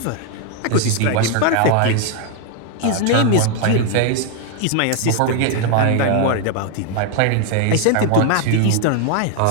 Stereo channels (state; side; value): different; both; correlation 0.00